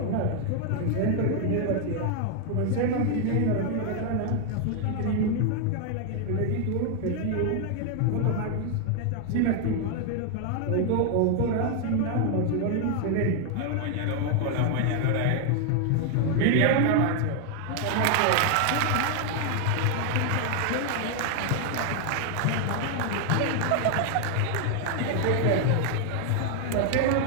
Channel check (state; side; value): different; both; correlation 0.00